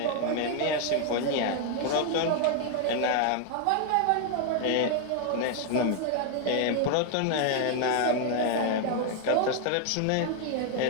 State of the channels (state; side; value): different; both; correlation 0.00